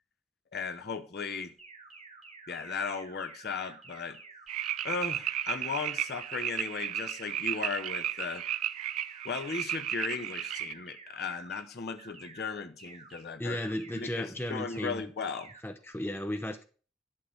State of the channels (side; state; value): both; normal; correlation 0.34